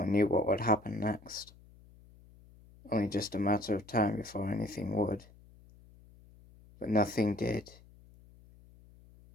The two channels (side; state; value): left; noise; hum, 24 dB below the sound